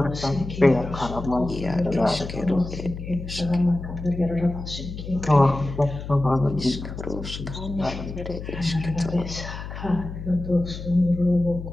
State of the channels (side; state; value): left; noise; hum, 9 dB below the sound